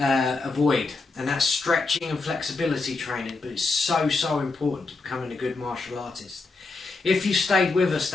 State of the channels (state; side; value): quieter; right; 3.8 dB